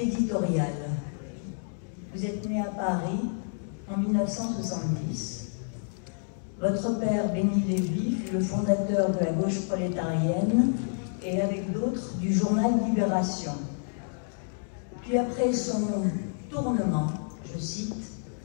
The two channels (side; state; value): right; silent; digital silence